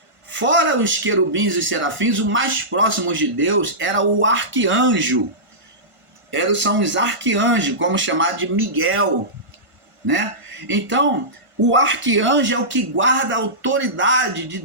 Fora os querubins e os serafins, o mais próximo de Deus era o arcanjo. São os arcanjos, como chamar de Miguel, né? Então, o arcanjo é o que guarda a autoridade de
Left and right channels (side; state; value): left; late; 1.5 ms